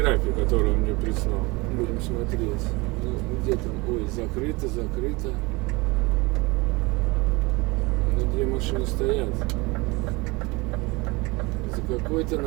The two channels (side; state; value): left; quieter; 24.6 dB